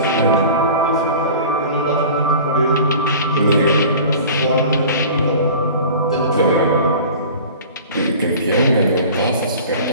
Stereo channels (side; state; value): both; inverted; correlation -0.41